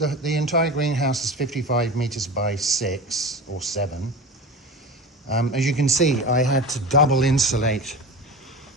entire greenhouse is 55 meters by 6 or 7. As you can see, I had to double insulate.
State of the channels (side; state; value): both; normal; correlation 0.31